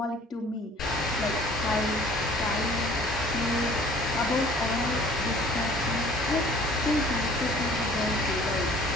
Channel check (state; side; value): normal; both; correlation 0.52